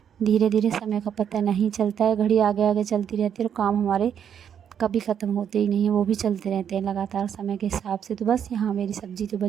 धीरे धीरे समय का पता नहीं चलता है, घड़ी आगे आगे चलती रहती है, और काम हमारे कभी ख़त्म होते ही नहीं है, वो भी चलते रहते हैं लगातार समय के हिसाब से। तो बस यहाँ मेरी सब्ज़ी तो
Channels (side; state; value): left; quieter; 8.5 dB